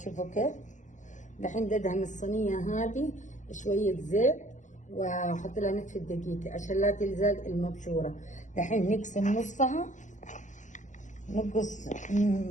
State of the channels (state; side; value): late; right; 0.36 ms